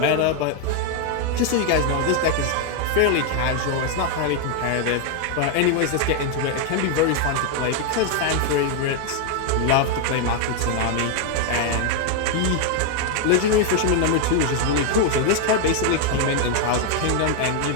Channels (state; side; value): different; both; correlation 0.01